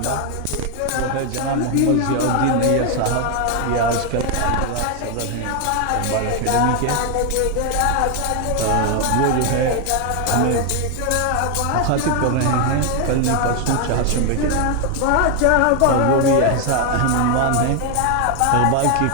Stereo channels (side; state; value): both; different; correlation 0.01